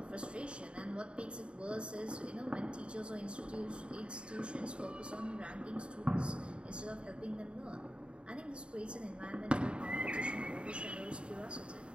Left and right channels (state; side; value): late; left; 0.055 ms